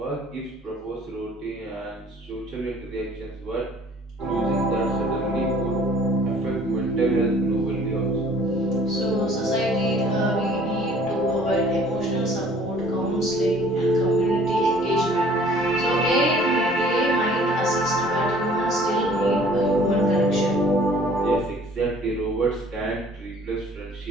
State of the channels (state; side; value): normal; both; correlation 0.53